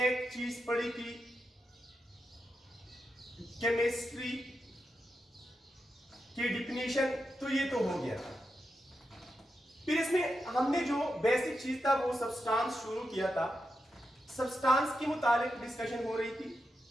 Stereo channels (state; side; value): normal; both; correlation 0.87